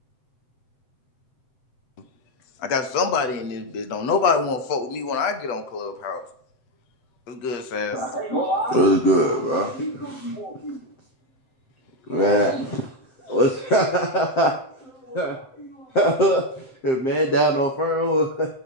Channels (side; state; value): right; late; 7.8 ms